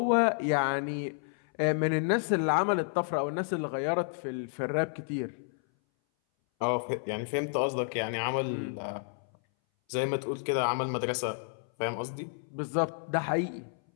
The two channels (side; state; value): right; silent; 57 dB below the other